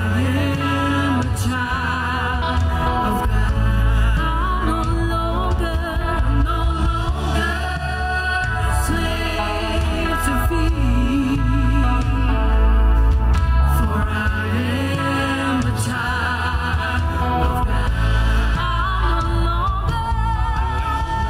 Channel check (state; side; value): identical; both; correlation 1.00